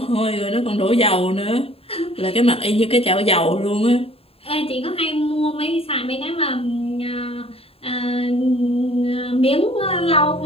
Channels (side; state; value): right; late; 0.28 ms